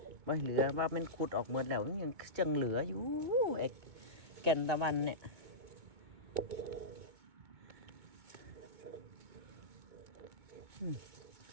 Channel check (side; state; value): left; late; 2.2 ms